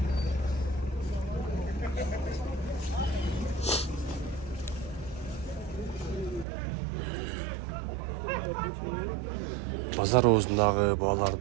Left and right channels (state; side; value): drops out; left; at 6.5 s